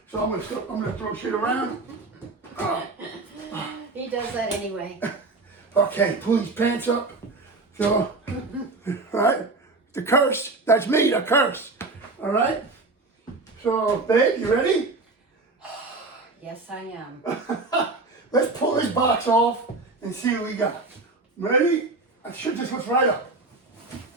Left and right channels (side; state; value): left; quieter; 3.5 dB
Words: so I'm gonna throw shit around. He does that anyway. Okay, pull these pants up. So, all right, the curse. That's me, the curse. All right. So, babe, you ready? Yes, I am. Let's pull this box off and see what we got. Ready? I should just lift right up.